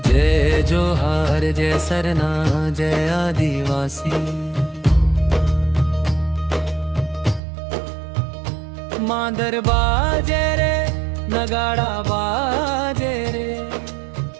जय जोहार जय सरना जय आदिवासी। मांदर बाजे रे नगाड़ा बाजे रे,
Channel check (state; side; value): drops out; left; at 7.4 s